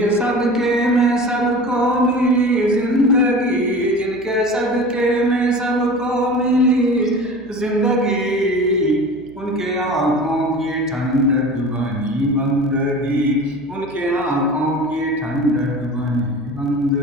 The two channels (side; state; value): right; noise; hum, 24 dB below the sound